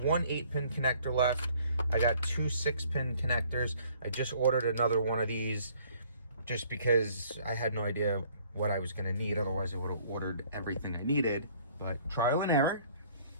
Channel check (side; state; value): both; inverted; correlation -0.59